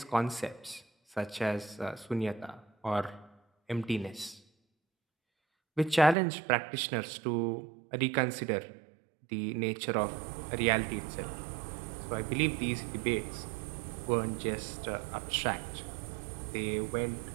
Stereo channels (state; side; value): drops out; left; at 6.2 s